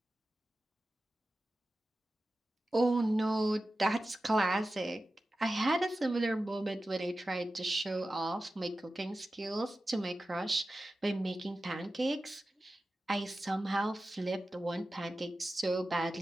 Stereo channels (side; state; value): both; normal; correlation 0.94